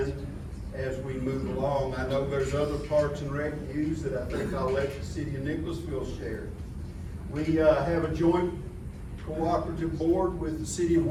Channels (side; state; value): both; identical; correlation 1.00